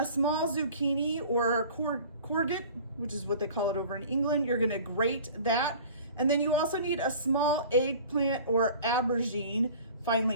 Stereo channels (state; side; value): inverted; both; correlation -0.45